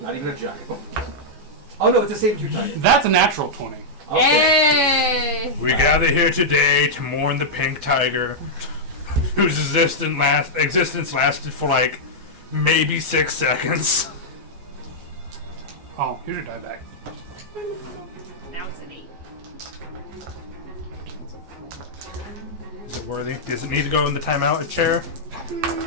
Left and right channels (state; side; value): late; left; 14 ms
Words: not even a giant. Oh no, it's a saber-tooth tiger. That's a natural 20. Okay. Yay! We gather here today to mourn the pink tiger, whose existence lasted for like maybe 6 seconds. Oh, here's your die bag. Now it's an 8. Is it worthy? Does it need to go in the timeout chair?